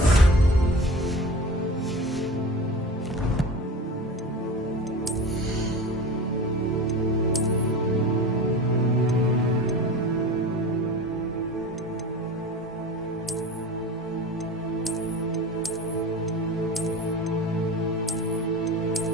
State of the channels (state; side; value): normal; both; correlation 0.34